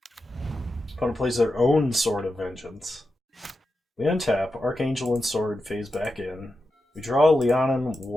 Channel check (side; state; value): both; normal; correlation 0.89